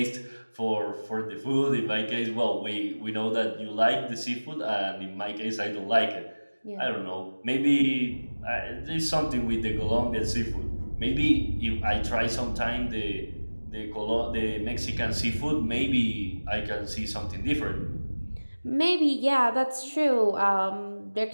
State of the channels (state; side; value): inverted; both; correlation -1.00